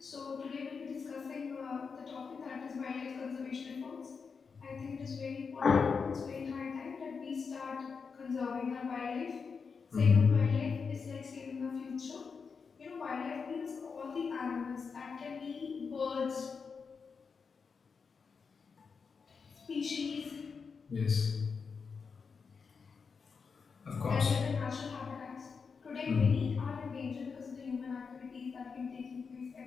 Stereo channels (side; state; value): right; quieter; 5.4 dB